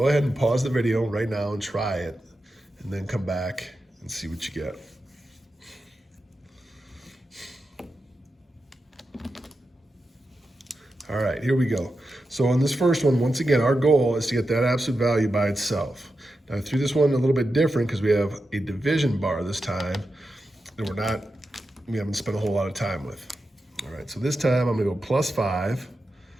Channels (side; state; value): both; normal; correlation 0.90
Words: ahead and pause the video right now and try it, and then come back and see what you get. All right, here we go. So on this first one, once again, our goal is to get that absolute value by itself. Now I threw this one a little bit different because we have a division bar this time that we haven't spent a whole lot of time with. All right, so this time I'm gonna go +5,